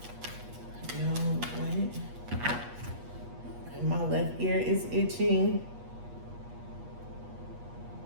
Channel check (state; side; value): late; left; 8.3 ms